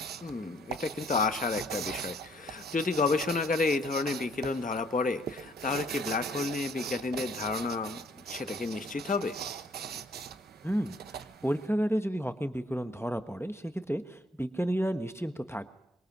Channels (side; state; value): both; normal; correlation 0.64